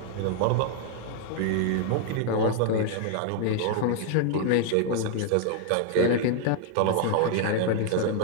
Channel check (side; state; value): both; different; correlation 0.00